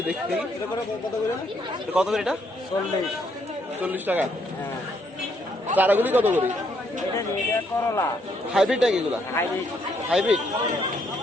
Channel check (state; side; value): normal; both; correlation 0.72